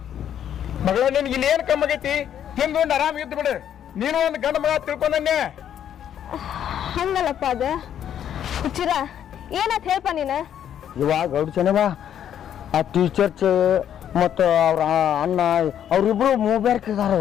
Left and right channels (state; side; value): quieter; right; 9.8 dB